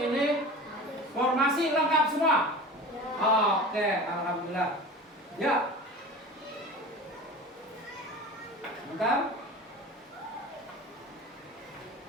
ini formasi lengkap semua. Oke, alhamdulillah. Ya. Bentar.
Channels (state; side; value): normal; both; correlation 0.35